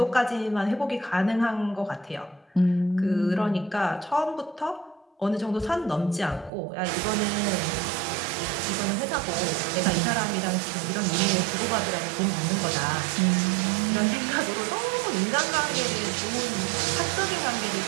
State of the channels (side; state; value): left; drops out; at 6.5 s